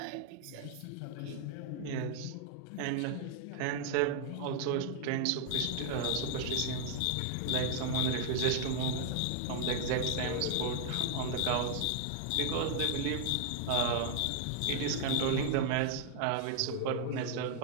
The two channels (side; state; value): both; different; correlation 0.00